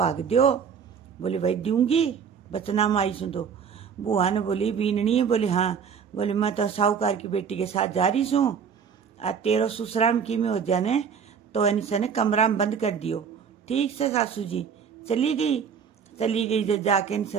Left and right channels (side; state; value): left; quieter; 6.9 dB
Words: दो। बोले भाई दूंगी बचना माई सुन तो। बुआ ने बोली बीननी बोले हाँ। बोले मैं तो साहूकार की बेटी के साथ जा रही हूँ और तेरो ससुराल की में हो जाने तो ऐसा ने कमरा में बंद कर दियो। ठीक से सासू जी चली गई जब जाके